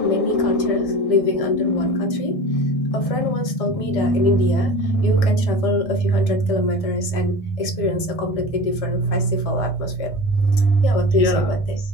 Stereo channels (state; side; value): late; right; 1.6 ms